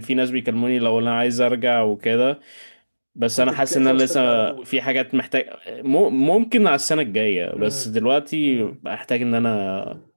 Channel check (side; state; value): both; inverted; correlation -1.00